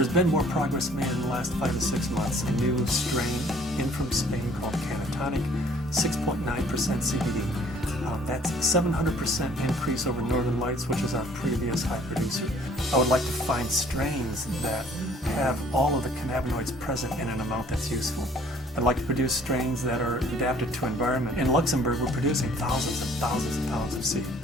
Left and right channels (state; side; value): normal; both; correlation 0.57